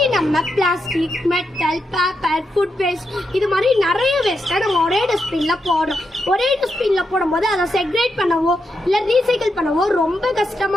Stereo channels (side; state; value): both; normal; correlation 0.84